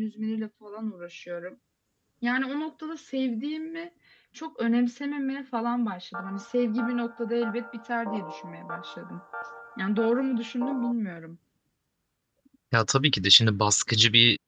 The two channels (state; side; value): identical; both; correlation 1.00